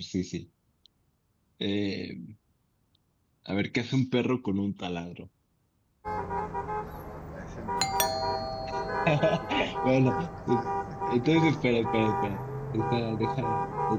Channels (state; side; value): identical; both; correlation 1.00